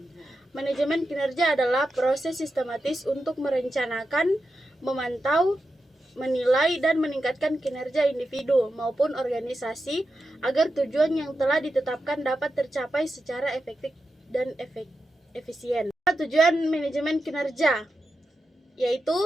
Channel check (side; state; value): both; normal; correlation 0.90